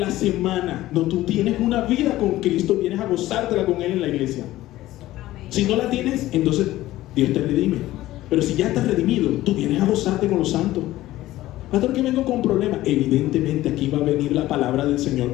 semana. No, tú tienes una vida con Cristo, vienes a gozártela con Él en la iglesia. Si no la tienes, entonces Dios te redime. Pero si ya estás redimido, tú vienes a gozarte con los santos. Pastor, que vengo con problemas. Evidentemente aquí va a venir la palabra del Señor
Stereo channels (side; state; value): right; quieter; 15.8 dB